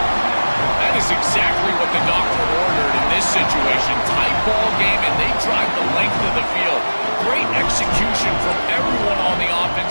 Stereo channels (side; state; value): both; inverted; correlation -1.00